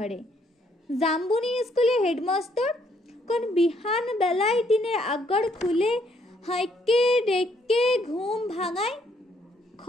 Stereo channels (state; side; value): normal; both; correlation 0.69